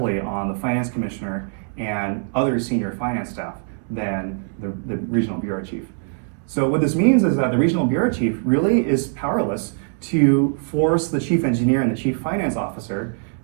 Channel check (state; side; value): silent; left; 64 dB below the other